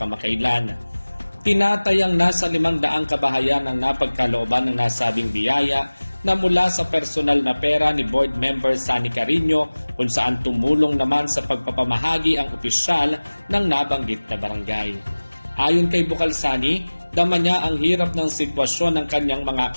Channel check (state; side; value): inverted; both; correlation -1.00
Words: Tinatayang nasa 500 kabahayan ang napagkalooban ng nasabing biyaya na mula sa personal na pera ni Board Member Sani Carino kung saan tumulong naman sa pagpapamahagi ang opisyal ng nabanggit na barangay. Ayon kay Bukal Sani, dama niya ang hirap ng sitwasyon ng kanyang mga